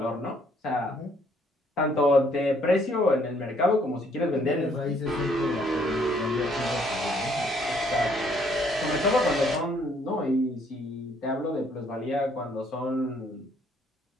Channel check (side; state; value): both; normal; correlation 0.66